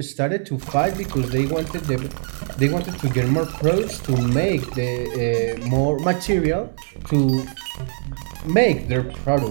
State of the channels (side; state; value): left; silent; digital silence